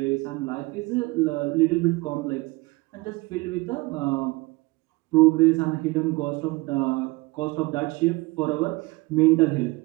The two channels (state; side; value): quieter; left; 23.3 dB